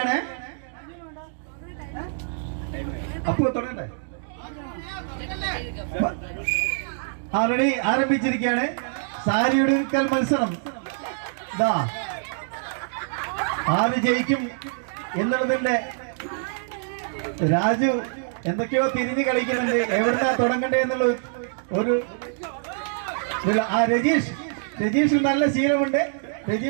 അപ്പു തുടങ്ങണ്ടേ? ആൾറെഡി ആരംഭിച്ചിരിക്കുകയാണ് സാരി ഉടുക്കൽ മത്സരം. ഇതാ ആര് ജയിക്കും എന്നുള്ളതിന്റെ രാജു എന്തൊക്കെയോ തിരിഞ്ഞു കളിക്കുന്നുണ്ട്. എവിടുന്നാ തുടങ്ങണ്ടേ എന്നുള്ള ഒരു രജീഷ് നല്ല ശീലമുണ്ട്.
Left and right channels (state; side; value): silent; left; digital silence